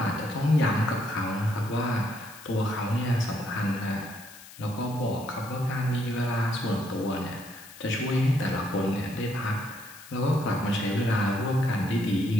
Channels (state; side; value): noise; left; hiss, 18 dB below the sound